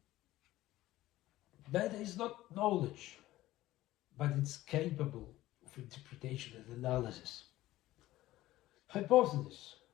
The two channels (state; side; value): quieter; right; 16.0 dB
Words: Data is not knowledge, but it's capable of interpretation and analysis. Hypothesis